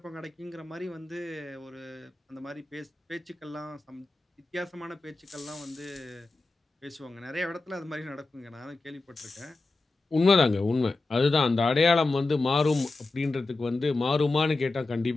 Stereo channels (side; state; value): right; quieter; 3.3 dB